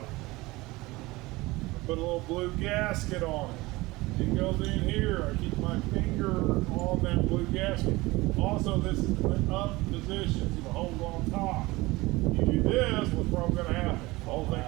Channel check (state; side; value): quieter; left; 21.1 dB